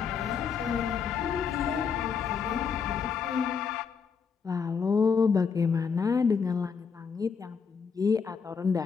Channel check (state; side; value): quieter; right; 6.0 dB